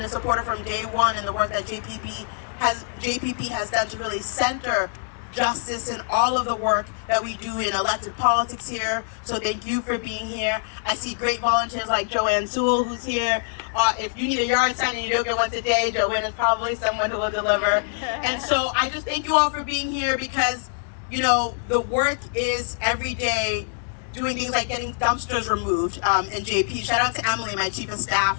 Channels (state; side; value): silent; right; digital silence